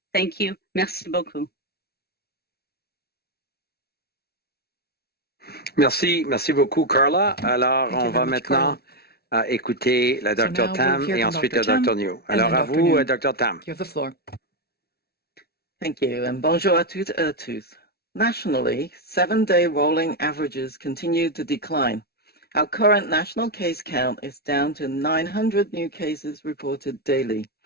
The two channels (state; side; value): late; right; 0.45 ms